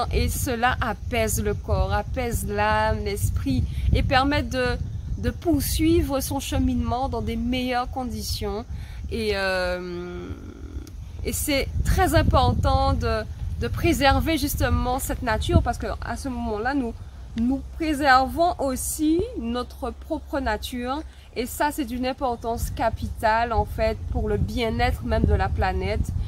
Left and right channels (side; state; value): both; identical; correlation 1.00